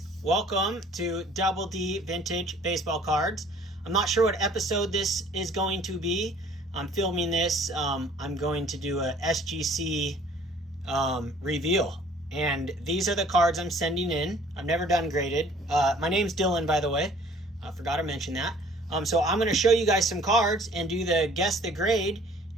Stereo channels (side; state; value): both; normal; correlation 0.54